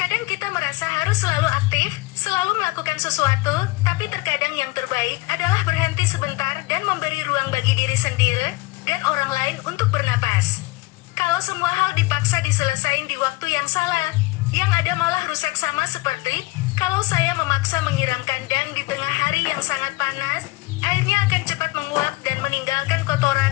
kita merasa harus selalu aktif, selalu melakukan sesuatu, tapi terkadang yang terbaik adalah berhenti sebentar dan memberi ruang bagi diri sendiri dan orang lain untuk bernapas. Kalau semua hal dipaksa diselesain di waktu yang salah, yang ada malah rusak, sama seperti kalau saya memaksa menyiram kandang di tengah hari yang sangat panas, airnya akan cepat menguap dan meninggalkan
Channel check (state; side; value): quieter; right; 21.5 dB